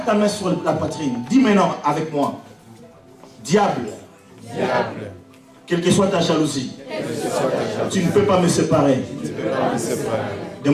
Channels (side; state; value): both; identical; correlation 1.00